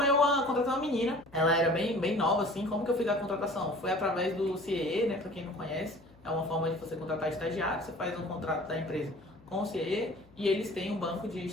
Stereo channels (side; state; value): left; noise; hum, 27 dB below the sound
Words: contratar uma menina, ela era bem nova assim. Como que eu fiz a contratação? Foi através do CIE, né, para quem não conhece, é uma forma de você contratar estagiário, você faz um contrato da empresa com o CIE e eles têm um banco de